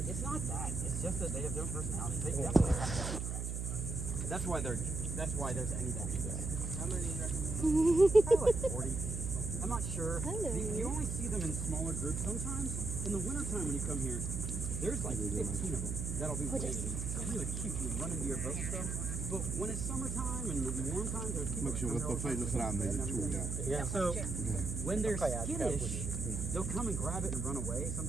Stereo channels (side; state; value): right; noise; hum, 3 dB below the sound